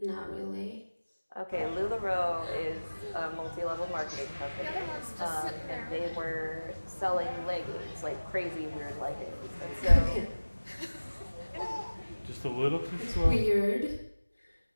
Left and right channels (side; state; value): both; inverted; correlation -1.00